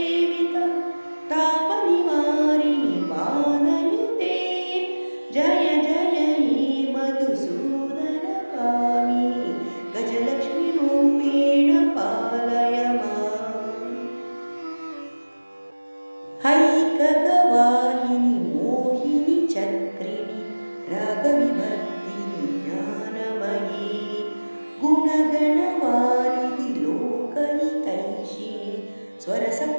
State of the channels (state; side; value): inverted; both; correlation -1.00